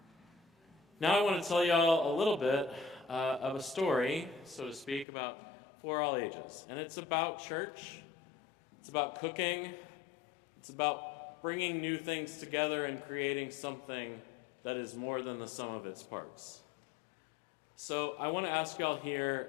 Now I want to tell y'all a little bit of a story, so to speak, for all ages. And it's about church, it's about cooking, it's about bringing new things together and creating something that is more than the sum of its parts. So I want to ask y'all here,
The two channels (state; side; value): drops out; right; at 5.1 s